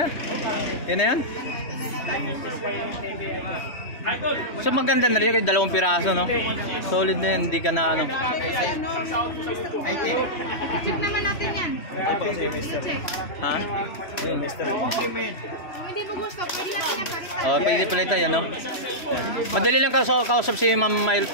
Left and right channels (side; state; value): right; late; 3.1 ms